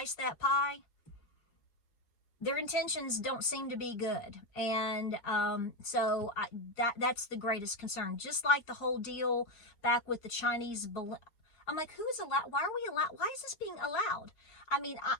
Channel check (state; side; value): late; right; 4.8 ms